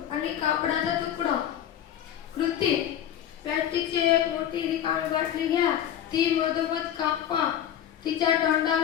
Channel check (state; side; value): quieter; right; 10.3 dB